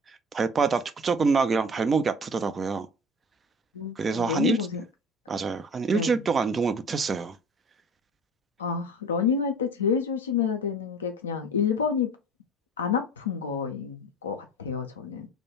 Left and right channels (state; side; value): normal; both; correlation 0.41